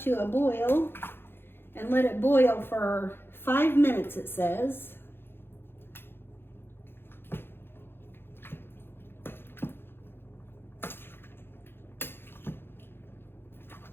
a boil and let it boil for 5 minutes, it says.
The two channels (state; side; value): late; right; 0.11 ms